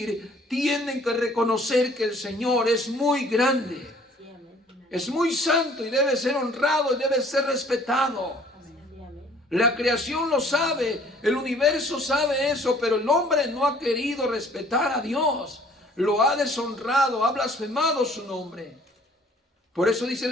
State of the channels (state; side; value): normal; both; correlation 0.56